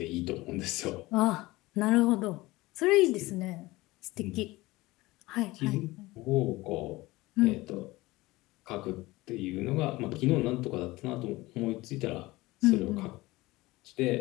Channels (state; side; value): quieter; right; 20.1 dB